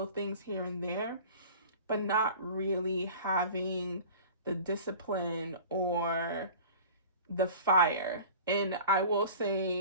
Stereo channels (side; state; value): both; inverted; correlation -0.41